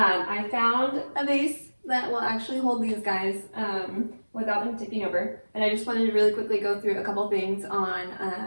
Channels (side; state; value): both; inverted; correlation -1.00